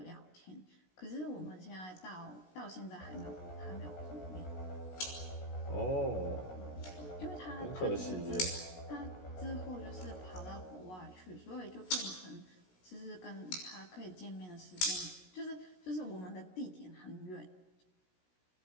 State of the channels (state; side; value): late; right; 16 ms